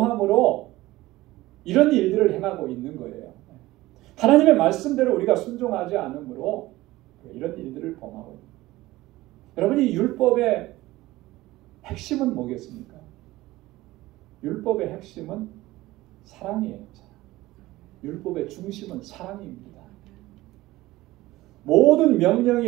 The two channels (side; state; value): left; quieter; 18.0 dB